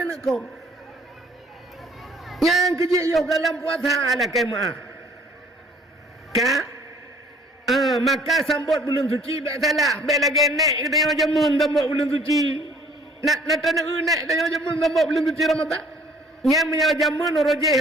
aku. Yang kejik yo dalam puasa ala kemah. Maka sambut bulan suci tak salah. Baik lagi naik kita yang jamun sambut bulan suci. Nak tanah naik kita yang jamun sambut bulan suci Ramadan. Yang menyala jamun rojeh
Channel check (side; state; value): both; normal; correlation 0.56